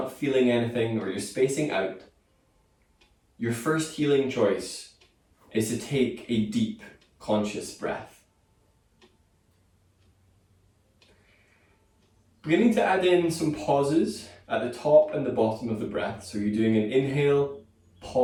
feeling anything, or you're spacing out, your first healing choice is to take a deep, conscious breath. Beginning to add in some pauses at the top and the bottom of the breath. So you're doing an inhale,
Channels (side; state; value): both; identical; correlation 1.00